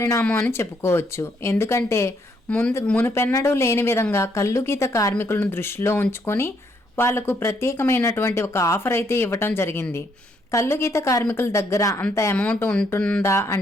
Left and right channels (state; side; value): normal; both; correlation 0.72